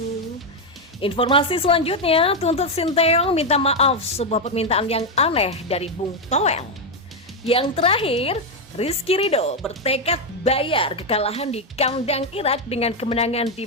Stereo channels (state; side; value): normal; both; correlation 0.04